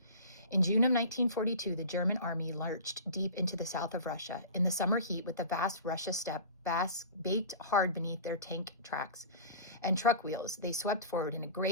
In June of 1942, the German army lurched deep into the south of Russia. In the summer heat, with the vast Russia steppe baked hard beneath their tank tracks and truck wheels, they swept forward in a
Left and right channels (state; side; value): inverted; both; correlation -0.36